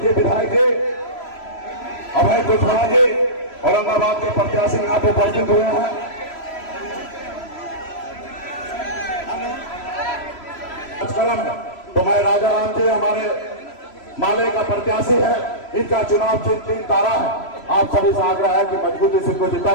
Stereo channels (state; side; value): late; right; 3.0 ms